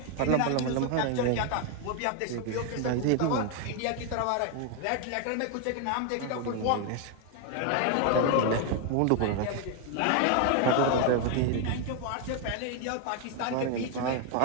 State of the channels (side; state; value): both; different; correlation 0.01